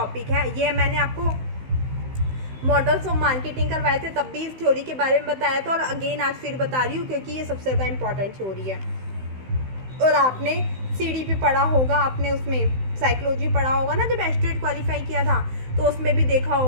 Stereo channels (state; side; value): late; left; 16 ms